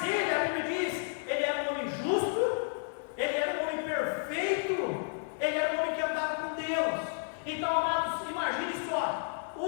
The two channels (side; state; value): right; silent; digital silence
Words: ele, a Bíblia diz, ele era um homem justo, ele era um homem perfeito, ele era um homem que andava com Deus. Então, amados, imagine só,